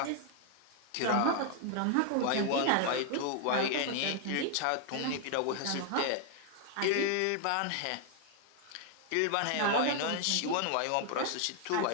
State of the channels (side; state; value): both; different; correlation 0.00